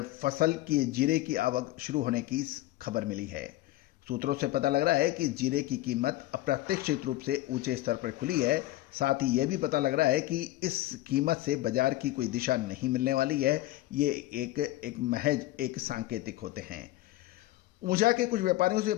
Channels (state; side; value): quieter; right; 16.6 dB